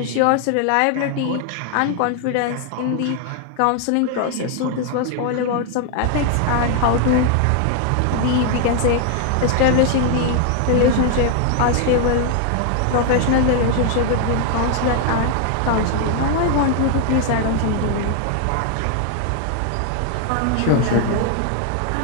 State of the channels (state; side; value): different; both; correlation 0.00